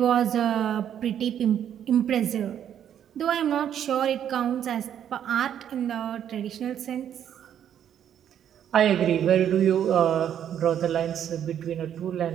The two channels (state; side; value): quieter; left; 9.7 dB